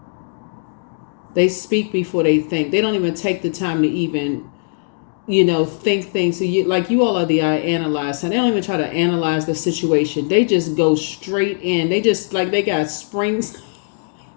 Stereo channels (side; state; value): right; silent; digital silence